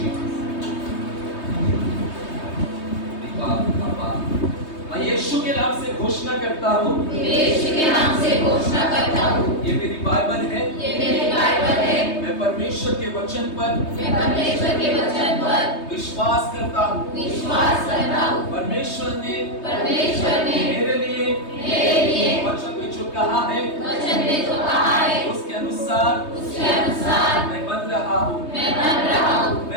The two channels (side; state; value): right; late; 3.2 ms